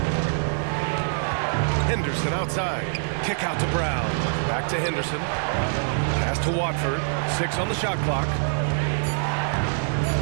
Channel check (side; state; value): left; silent; digital silence